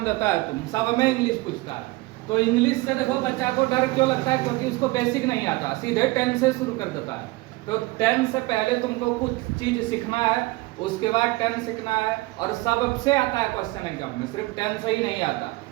देता है तुम सब में इंग्लिश पूछता है। तो इंग्लिश से देखो बच्चा को डर क्यों लगता है? क्योंकि उसको बेसिक नहीं आता, सीधे 10 से शुरू कर देता है। तो 10 से पहले तुमको कुछ चीज सीखना है, उसके बाद 10 सीखना है। और सबसे आता है क्वेश्चन एग्जाम में, सिर्फ 10 से ही नहीं आता,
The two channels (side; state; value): left; quieter; 21.3 dB